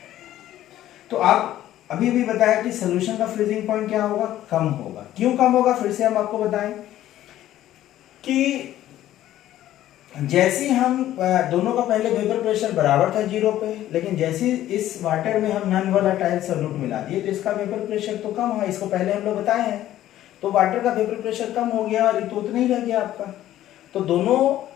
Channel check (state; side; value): quieter; right; 13.2 dB